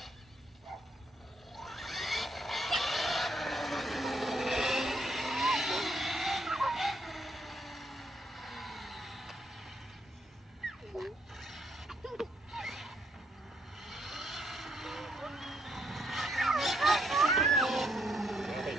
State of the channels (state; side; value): normal; both; correlation 0.74